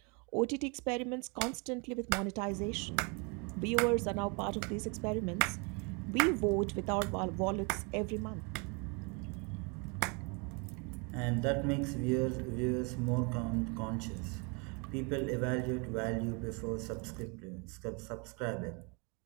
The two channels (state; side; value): quieter; left; 32.7 dB